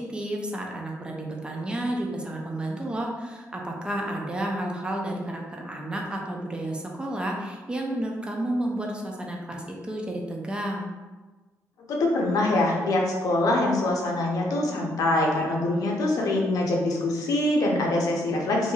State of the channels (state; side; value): normal; both; correlation 0.72